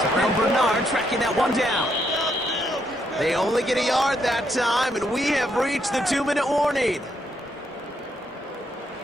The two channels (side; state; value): both; normal; correlation 0.76